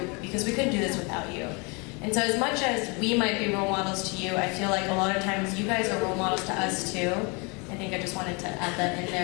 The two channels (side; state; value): right; quieter; 30.6 dB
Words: because we couldn't do this without you. And so as much as we might be role models to you, I feel like a lot of times you guys are role models to us too. I think I just wanted to add that in